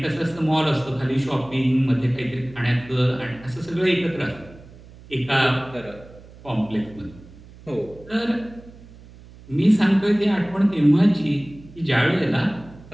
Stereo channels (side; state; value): right; noise; hum, 21 dB below the sound